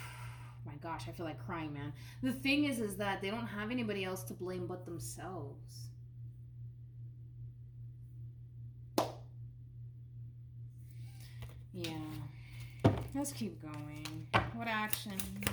my gosh, I feel like crying, man. The thing is that they don't have anybody else to blame but themselves. Yeah. Let's keep going. What actions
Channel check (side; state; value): both; identical; correlation 1.00